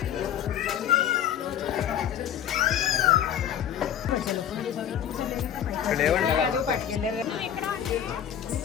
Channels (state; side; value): quieter; right; 9.9 dB